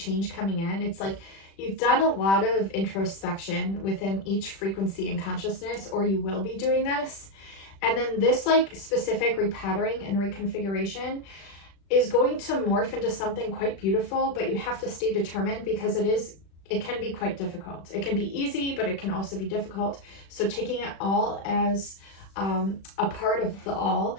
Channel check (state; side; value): late; right; 36 ms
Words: coming in. It's like you've done a lot of introspection within each frequency and consciousness, or you will be doing this. And then this like specific repattering and reconfiguration is going to morph into something quite beautiful, but you have to stay determined because it can be quite difficult. It can be easy, but it can also be difficult. So taking it all as a part of the all